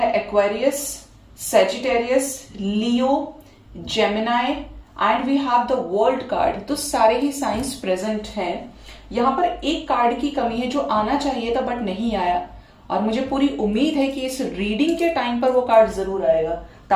Aquarius, Sagittarius, Leo, Gemini and we have the world card. तो सारे ही साइंस प्रेजेंट हैं। यहाँ पर एक कार्ड की कमी है जो आना चाहिए था बट नहीं आया, और मुझे पूरी उम्मीद है कि इस रीडिंग के टाइम पर वो कार्ड जरूर आएगा।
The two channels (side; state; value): both; identical; correlation 1.00